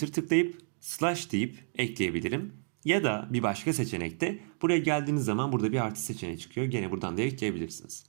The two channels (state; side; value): silent; left; digital silence